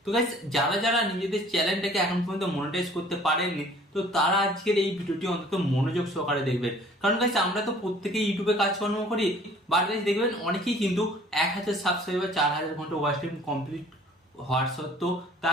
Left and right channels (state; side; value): normal; both; correlation 0.52